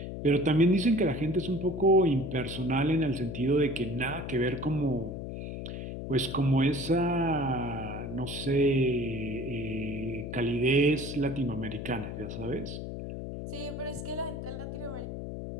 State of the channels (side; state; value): left; noise; hum, 7 dB below the sound